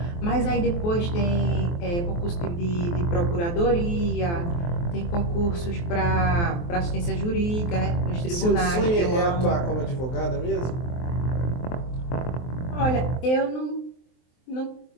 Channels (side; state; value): right; late; 23 ms